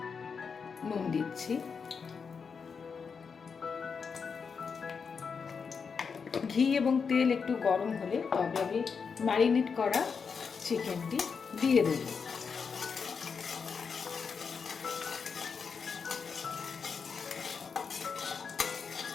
নুন দিচ্ছি। ঘি এবং তেল একটু গরম হলে তবে আমি ম্যারিনেট করা চিকেনটি দিয়ে দেব।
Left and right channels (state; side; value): quieter; right; 5.8 dB